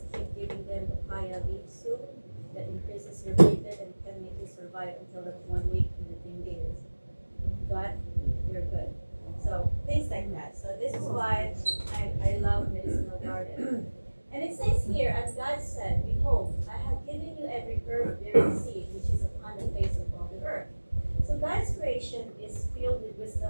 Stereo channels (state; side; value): inverted; both; correlation -1.00